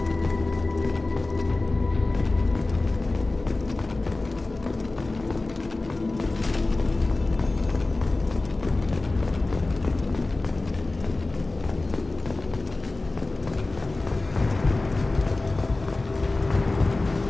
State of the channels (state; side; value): quieter; right; 3.1 dB